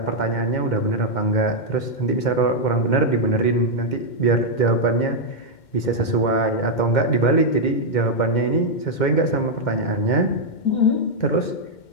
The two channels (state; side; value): late; right; 2.1 ms